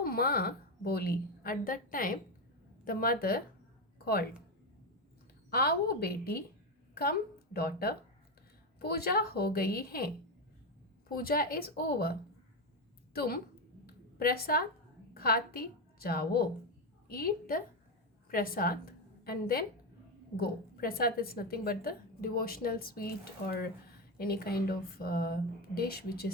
माँ बोली. At that time, the mother called. आओ बेटी, come daughter, पूजा हो गई है. पूजा is over. तुम प्रसाद खाती जाओ. Eat the prasad and then go. Prasad is nothing but the devotional sweet or any kind of dish which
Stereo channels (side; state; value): both; normal; correlation 0.11